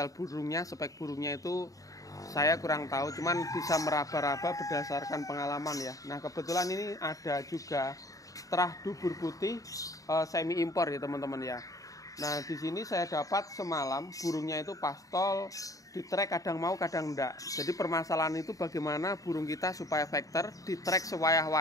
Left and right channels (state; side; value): late; right; 0.16 ms